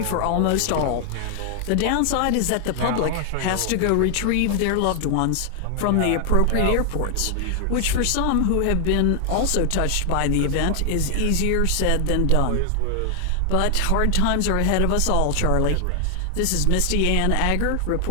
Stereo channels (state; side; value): different; both; correlation 0.00